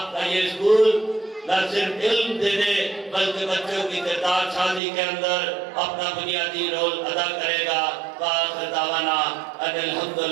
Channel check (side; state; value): left; drops out; at 4.8 s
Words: کا یہ اسکول نہ صرف علم دینے بلکہ بچوں کی کردار سازی کے اندر اپنا بنیادی رول ادا کرے گا۔ وآخر دعوانا ان